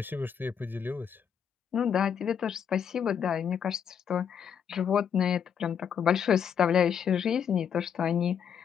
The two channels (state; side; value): quieter; right; 7.8 dB